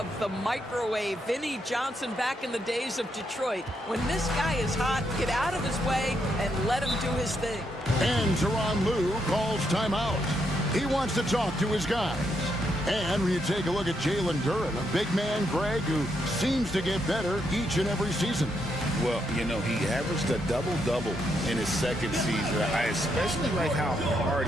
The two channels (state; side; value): normal; both; correlation 0.78